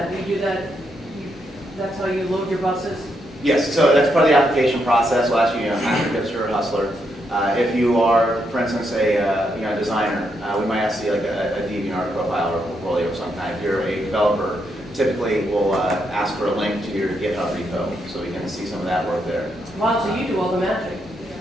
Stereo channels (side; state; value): both; normal; correlation 0.79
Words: Do you do that, that's how you load your buses? Yes, so that's part of the application process. We'll ask you, after hipster or hustler. If you are, for instance, a designer, we might ask you like a DeviantArt profile or a portfolio of some kind. If you're a developer, typically we'll ask for a link to your GitHub repo so we can see some of that work there. Wow, so you do all the magic.